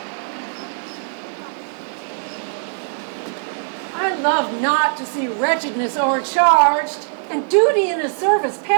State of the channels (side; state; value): left; silent; digital silence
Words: I love not to see wretchedness o'ercharged, and duty in a service